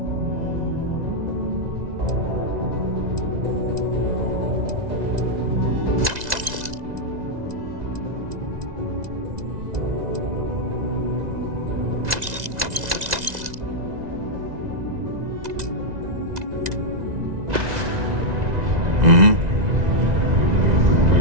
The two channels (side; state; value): left; late; 2.0 ms